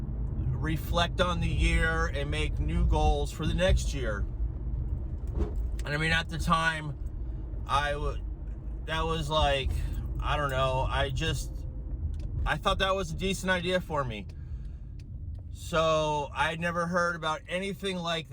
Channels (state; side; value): identical; both; correlation 1.00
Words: reflect on the year and make new goals for the next year. And I mean, at the time, that was like, I don't know, I thought that was a decent idea for me. So I'd never heard about anything like